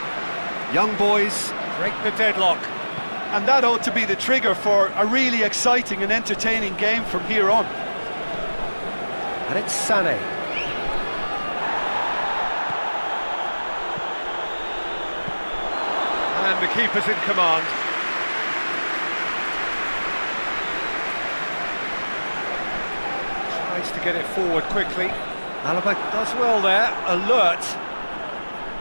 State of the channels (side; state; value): both; inverted; correlation -1.00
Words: Young boys break the deadlock. And that ought to be the trigger for a really exciting and entertaining game from here on. And it's Sané. And the keeper's in command. Tries to get it forward quickly. Alaba does well there, alert.